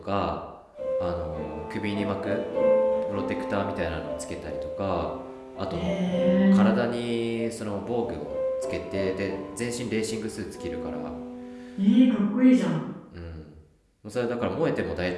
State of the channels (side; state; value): both; identical; correlation 1.00